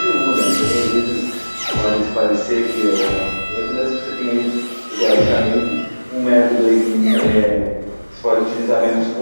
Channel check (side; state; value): both; inverted; correlation -1.00